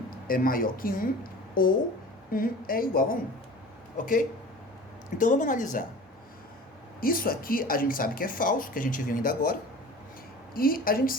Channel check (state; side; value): normal; both; correlation 0.40